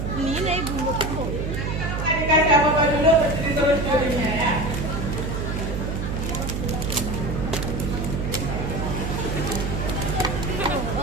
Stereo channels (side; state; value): right; noise; hum, 3 dB below the sound